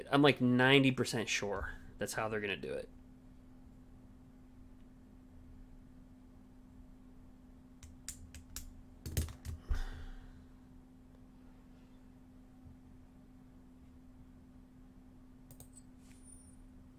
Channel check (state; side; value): identical; both; correlation 1.00